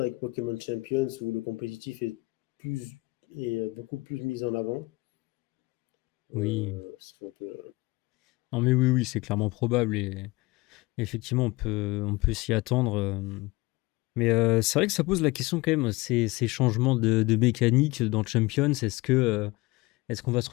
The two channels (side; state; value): right; quieter; 22.4 dB